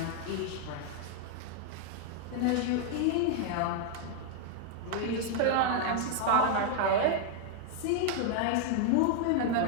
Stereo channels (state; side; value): different; both; correlation 0.00